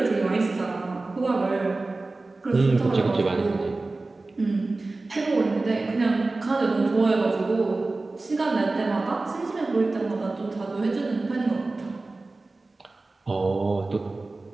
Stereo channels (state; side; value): quieter; left; 3.3 dB